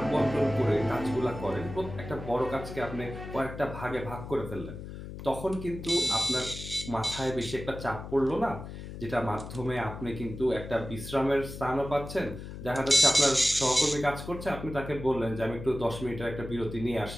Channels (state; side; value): noise; left; hum, 10 dB below the sound